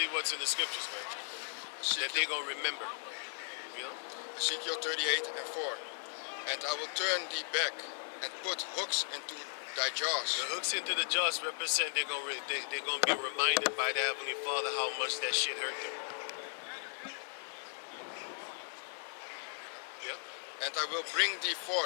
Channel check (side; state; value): right; silent; 53 dB below the other